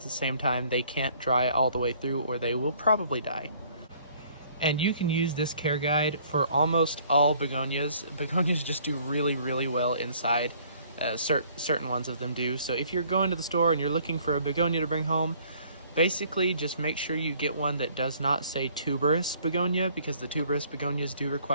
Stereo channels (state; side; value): inverted; both; correlation -0.59